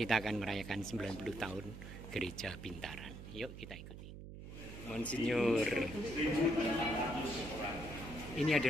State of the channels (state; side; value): noise; right; hum, 12 dB below the sound